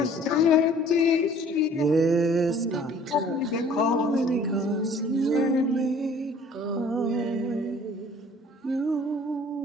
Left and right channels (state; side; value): normal; both; correlation 0.53